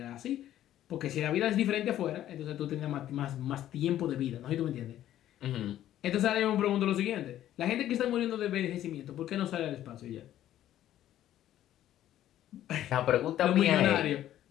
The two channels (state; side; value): quieter; right; 12.4 dB